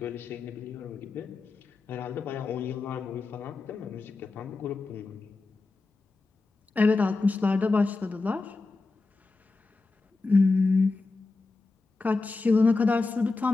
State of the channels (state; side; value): quieter; right; 3.7 dB